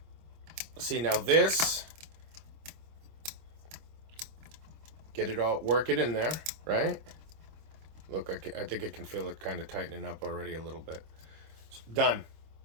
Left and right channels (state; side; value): late; left; 25 ms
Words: see, now this, get it all, work it in there, right? Look, I think I can feel it kind of tightening up already a little bit. Done.